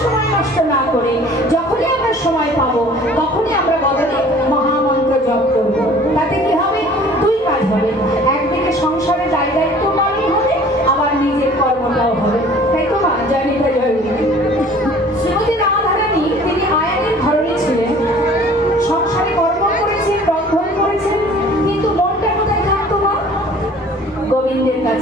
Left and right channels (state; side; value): normal; both; correlation 0.50